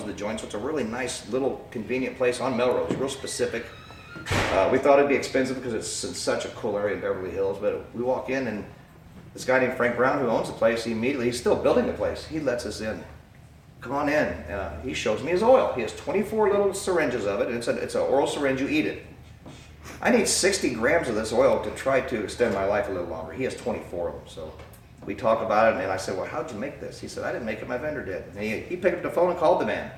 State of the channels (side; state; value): both; identical; correlation 1.00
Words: the joint, so it's a really nice little convenient place on Melrose, real specific. We thought it'd be expensive because it's in such a cool area in Beverly Hills, but we walk in and this guy named Frank Brown who owns the place, he's still building the place. He lets us in. Come on in. He shows me his oil. He has 24 little syringes of it, and it's an oral syringe, you eat it. I need 60 grams of this oil to try to extend my life a little longer. He has 24 of them, so we talk about it, and I said, well, how'd you make this? He said, I didn't make it, my vendor did. And he picked up the phone and called the man